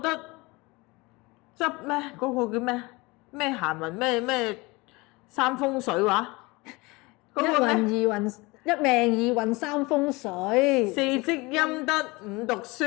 執咩嗰個叫咩閒雲咩三風水話，一運二運，一命二運三風水，四積陰德五讀書。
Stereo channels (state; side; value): quieter; right; 24.0 dB